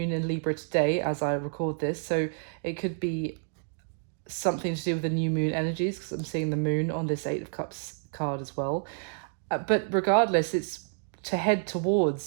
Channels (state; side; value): silent; left; digital silence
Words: in Libra today as I record this, so it could be something to do with the new moon energies, because I'm seeing the moon on this Eight of Cups card as well. But regardless, it's to head